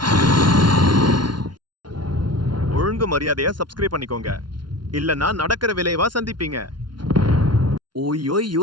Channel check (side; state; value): left; late; 0.71 ms